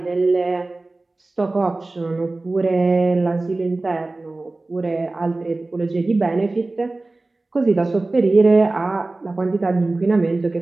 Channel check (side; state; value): left; quieter; 3.1 dB